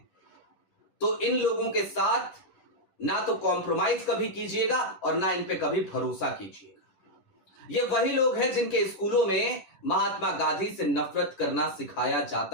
तो इन लोगों के साथ ना तो कॉम्प्रोमाइज कभी कीजिएगा और ना इन पे कभी भरोसा कीजिएगा। ये वही लोग हैं जिनके स्कूलों में महात्मा गांधी से नफरत करना सिखाया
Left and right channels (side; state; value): right; late; 10 ms